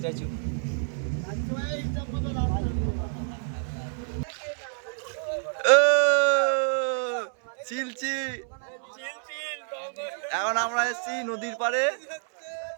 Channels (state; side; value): silent; left; 59 dB below the other